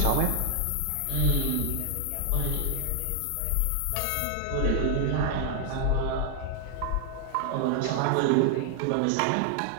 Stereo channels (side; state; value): both; different; correlation 0.00